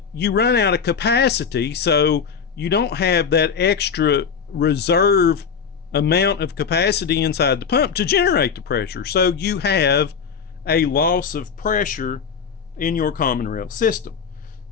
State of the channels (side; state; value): right; quieter; 6.5 dB